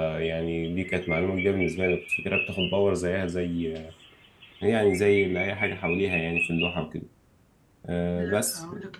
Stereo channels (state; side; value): identical; both; correlation 1.00